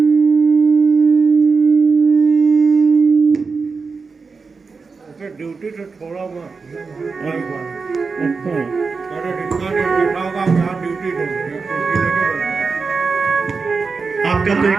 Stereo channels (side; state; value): left; quieter; 4.7 dB